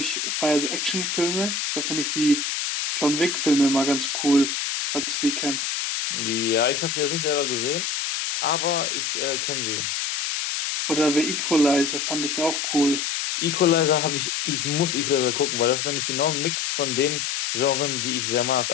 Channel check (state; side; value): noise; left; hiss, 1 dB below the sound